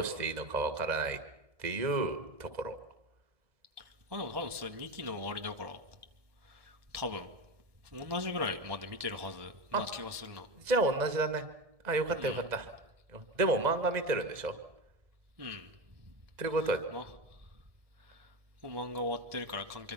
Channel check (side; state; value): left; late; 1.7 ms